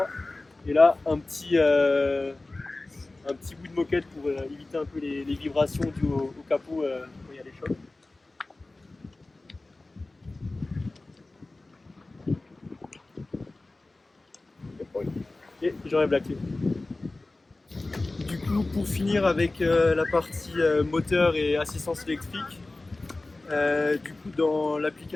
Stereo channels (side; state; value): right; quieter; 3.1 dB